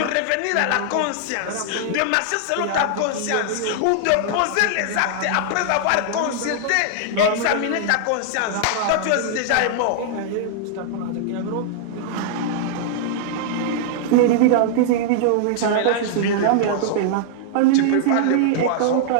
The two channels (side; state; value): both; different; correlation -0.01